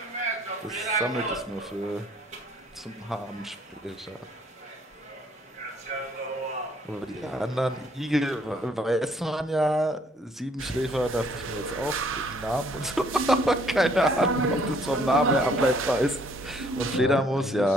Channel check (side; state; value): both; normal; correlation 0.63